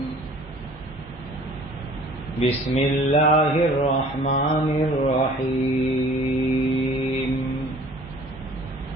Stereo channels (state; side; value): normal; both; correlation 0.51